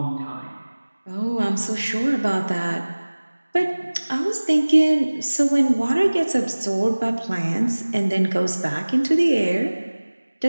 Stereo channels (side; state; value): both; inverted; correlation -1.00